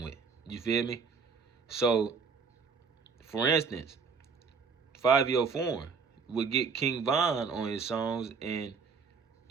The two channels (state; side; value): quieter; left; 5.3 dB